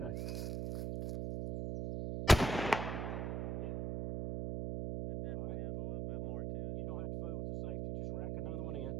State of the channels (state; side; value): noise; right; hum, 3 dB below the sound